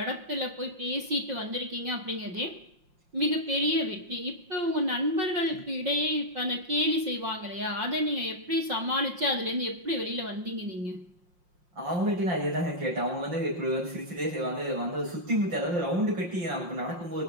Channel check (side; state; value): left; late; 5.6 ms